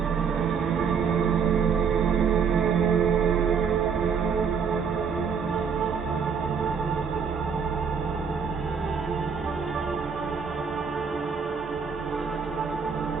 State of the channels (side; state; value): left; quieter; 6.3 dB